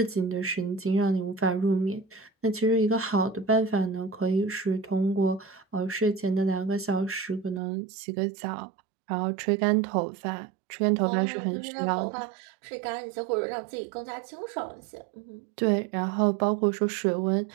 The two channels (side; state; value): left; drops out; at 7.6 s